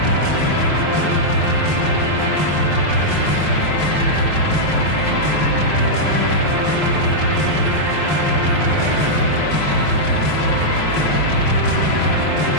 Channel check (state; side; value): late; right; 5.5 ms